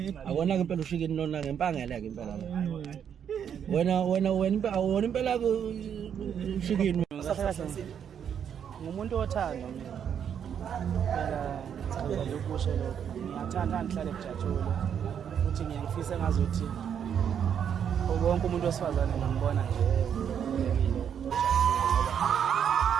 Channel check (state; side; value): quieter; left; 8.3 dB